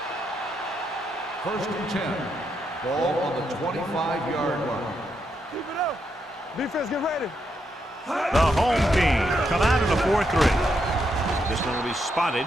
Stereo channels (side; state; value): both; normal; correlation 0.80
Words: First and 10. Ball on the 25-yard line. Keep it up. Defense, get ready. The home team come out in a 4-3. This one will be spotted